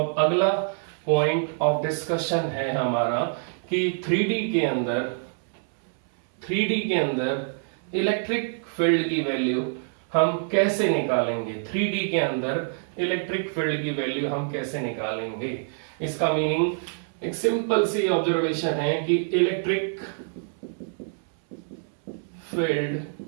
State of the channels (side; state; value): left; silent; 61 dB below the other